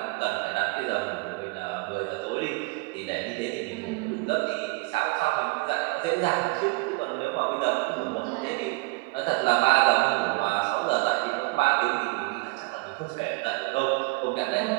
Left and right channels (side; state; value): left; quieter; 26.4 dB